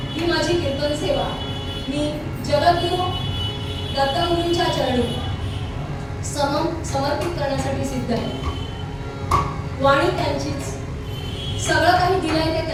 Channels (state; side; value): identical; both; correlation 1.00